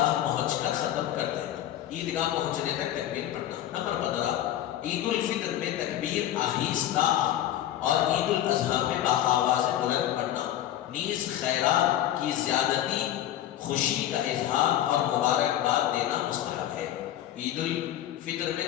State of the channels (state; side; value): quieter; right; 12.3 dB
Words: پہنچ کر ختم کر دینا. عیدگاہ پہنچنے تک تکبیر پڑھنا. نمبر 15 عید الفطر میں تکبیر آہستہ اور عید الاضحیٰ میں باآواز بلند پڑھنا. نیز خیرات کی زیادتی، خوشی کا اظہار اور مبارکباد دینا مستحب ہے. عید الفطر میں